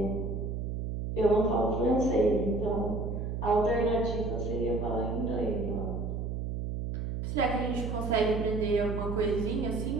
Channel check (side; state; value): right; noise; hum, 3 dB below the sound